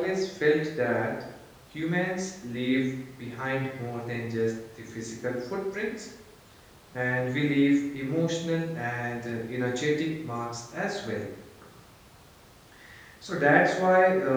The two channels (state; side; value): identical; both; correlation 1.00